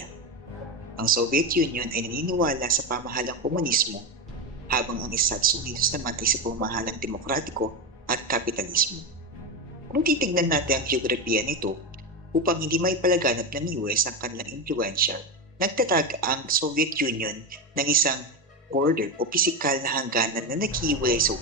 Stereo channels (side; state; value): both; normal; correlation 0.16